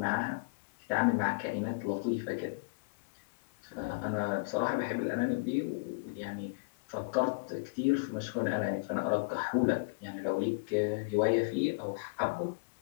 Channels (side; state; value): right; quieter; 31.8 dB